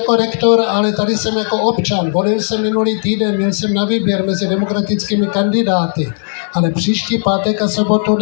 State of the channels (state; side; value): silent; right; digital silence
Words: rektor, ale tady jsem jako občan. Volil jsem minulý týden, měl jsem na výběr mezi demokratickými kandidáty, ale příští pátek a sobotu